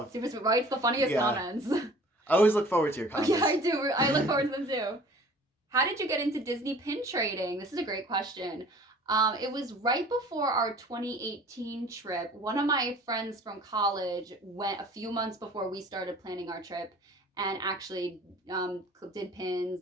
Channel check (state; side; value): normal; both; correlation 0.48